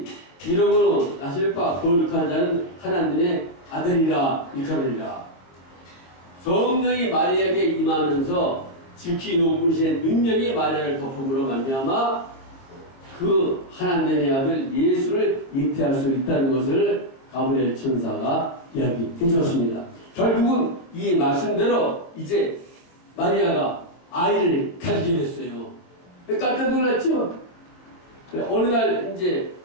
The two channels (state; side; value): late; right; 23 ms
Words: 이러므로 나실 바 거룩한 자는 하나님의 아들이라 일컬으리라. 성령이 마리아에게 임하면서 지극히 높으신 능력이 마리아를 덮음으로 말미암아 그 하나님의 아들 예수를 잉태할 수 있다는 것을 가브리엘 천사가 이야기해 주었습니다. 결국은 이 말씀대로 이제 마리아가 아이를 가지게 됐어요. 깜짝 놀랐죠? 어느 날 이제